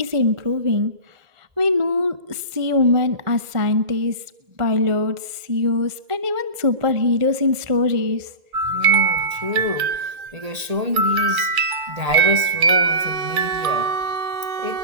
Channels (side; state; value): left; late; 1.8 ms